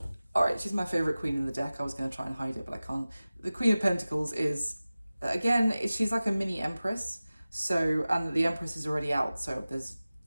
All right, she's my favorite queen in the deck. I was going to try and hide it, but I can't. The Queen of Pentacles is, again, she's like a mini Empress. So, and the Empress is already out, so there's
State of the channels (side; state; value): both; inverted; correlation -0.97